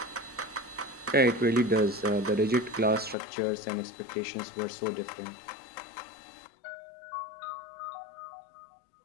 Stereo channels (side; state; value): right; drops out; at 3.2 s